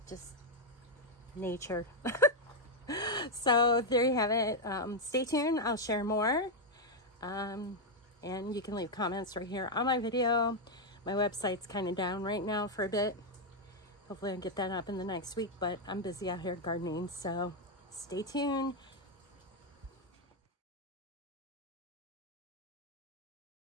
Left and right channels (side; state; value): both; normal; correlation 0.01